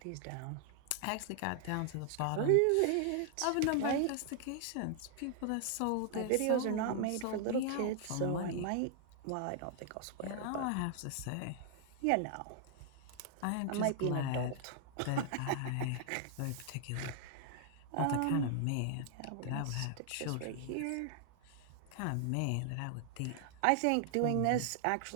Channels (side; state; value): both; different; correlation 0.00